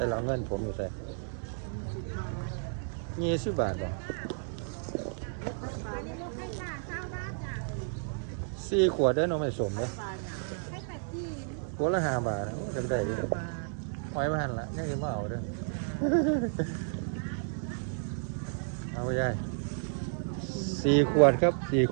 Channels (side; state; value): left; silent; digital silence